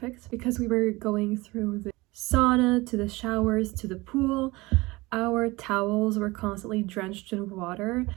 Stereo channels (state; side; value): quieter; left; 21.9 dB